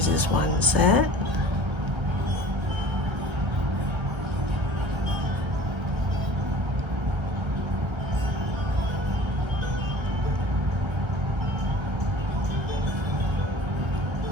is 1 set.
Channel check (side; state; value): left; late; 1.3 ms